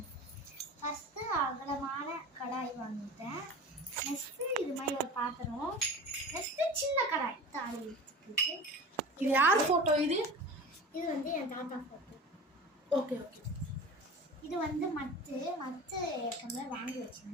ஃபஸ்ட்டு அகலமான கடாய் வாங்கிட்டேன். நெக்ஸ்ட்டு இது மாதிரி ஒரு பாத்திரம். நெக்ஸ்ட்டு சின்ன கடாய் தாளிக்கிறதுக்கு. இது யார் ஃபோட்டோ? இது இது வந்து என் தாத்தா ஃபோட்டோ. Okay okay. இது வந்து மத்து ஏற்கனவே வாங்கி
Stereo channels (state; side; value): normal; both; correlation 0.35